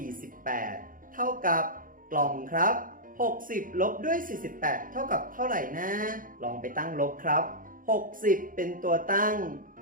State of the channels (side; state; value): left; late; 0.40 ms